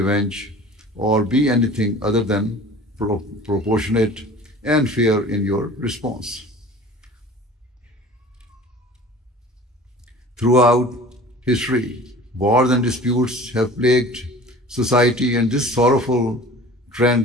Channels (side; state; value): both; normal; correlation 0.43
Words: or be anything other than proportionate and fair in your response. Throughout history, wars and disputes have plagued society, and this sorrowful